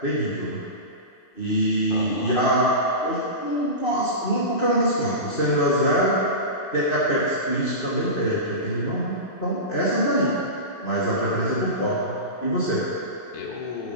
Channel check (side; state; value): right; late; 2.6 ms